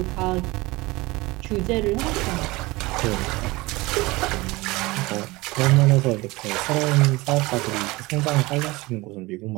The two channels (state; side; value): quieter; left; 21.7 dB